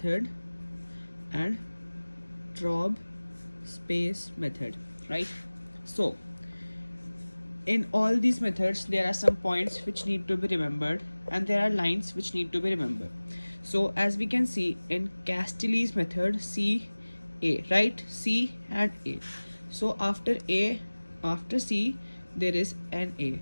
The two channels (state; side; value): inverted; both; correlation -1.00